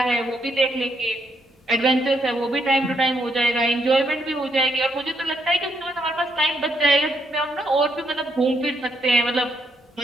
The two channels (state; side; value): normal; both; correlation 0.76